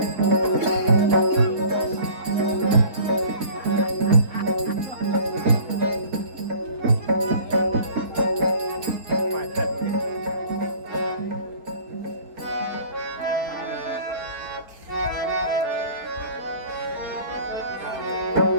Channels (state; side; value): late; left; 4.4 ms